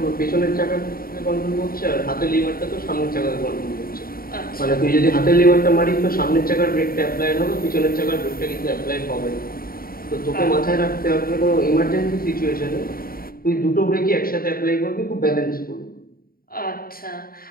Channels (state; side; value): late; right; 0.43 ms